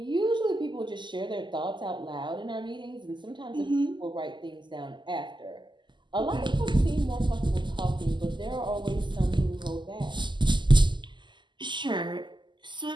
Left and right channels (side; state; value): left; late; 0.22 ms